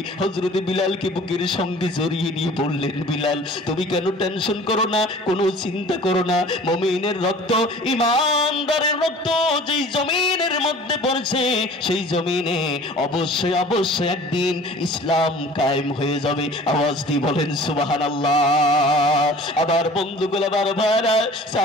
হযরত বিলালকে বুকের সঙ্গে জড়িয়ে নিয়ে বললেন, বিলাল, তুমি কেন টেনশন করো না, কোনো চিন্তা করো না। মুমিনের রক্ত, ঈমানদারের রক্ত যেই জমিনের মধ্যে পড়ছে, সেই জমিনে অবশ্যই অবশ্যই একদিন ইসলাম কায়েম হয়ে যাবে। আওয়াজ দিয়ে বলেন সুবহানাল্লাহ। আবার বন্ধুগুলো, আবার ভাইরা,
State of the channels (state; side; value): normal; both; correlation 0.46